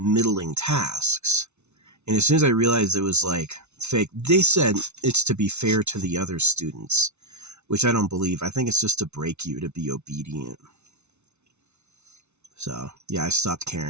tasks. And as soon as I realized it was like fake, they said it's to be fair to the other students, which I don't believe. I think it's just to break you to be obedient. So yeah, I stopped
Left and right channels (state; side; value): late; left; 0.82 ms